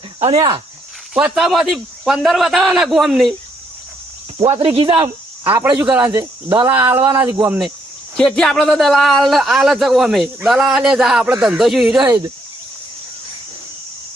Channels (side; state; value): both; normal; correlation 0.73